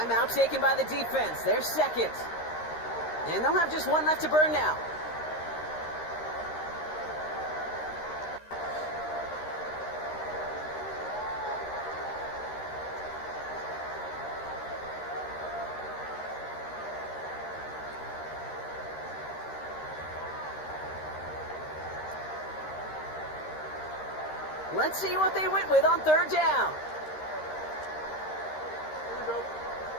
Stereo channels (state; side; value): late; right; 13 ms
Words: taken by the defense. They're second. And they'll have just one left to burn now. Let's see what they went with on third down.